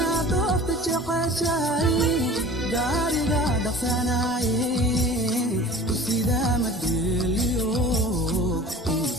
doorta jeceshahay gaariga dhaqsanaaye sidaa madeliyo ii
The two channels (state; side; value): normal; both; correlation 0.42